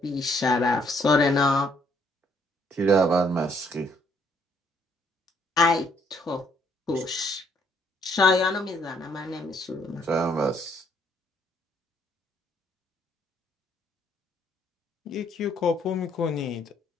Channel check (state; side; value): normal; both; correlation 0.67